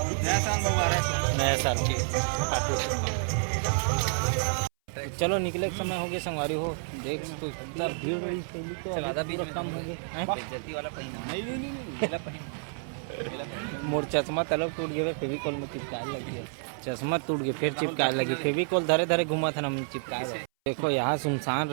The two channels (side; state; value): left; silent; 58 dB below the other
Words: नया साल मुबारक। नया साल के चलो निकले के समय हो गया संगवारी हो। देख तो इतना भीड़ रही पहले तो ज़्यादा भी कम हो गए। बेइज्जती वाला पहिना नहीं पहिन। मोर चश्मा तलब टूट गया फेविकोल में चिपकाए लग गया। चश्मा टूट गया फिर चिपकाए लगी फेविकोल धरे धरे घुमा था ना चिपकाए। देखो यहाँ सुनसान